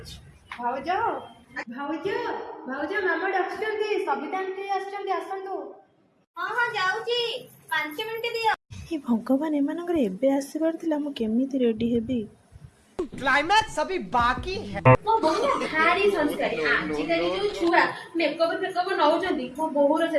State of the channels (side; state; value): both; identical; correlation 1.00